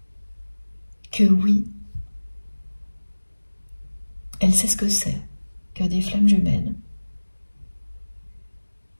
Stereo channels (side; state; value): both; inverted; correlation -1.00